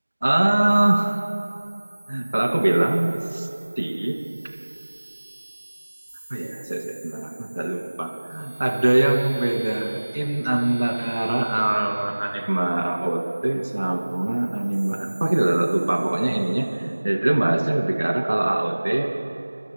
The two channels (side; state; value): both; inverted; correlation -1.00